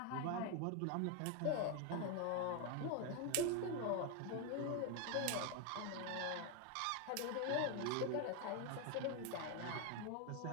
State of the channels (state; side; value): different; both; correlation 0.01